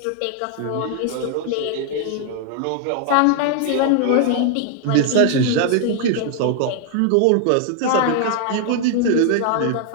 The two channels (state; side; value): different; both; correlation 0.00